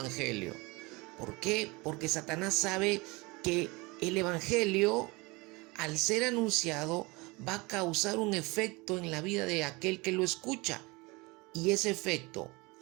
¿Por qué? Porque Satanás sabe que el Evangelio, al ser anunciado, va a causar un efecto en la vida de aquel que lo escucha. Y ese efecto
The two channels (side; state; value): left; quieter; 25.0 dB